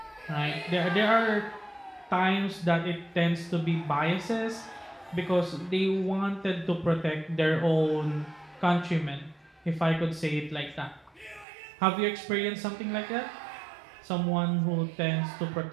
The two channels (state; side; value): drops out; left; at 11.5 s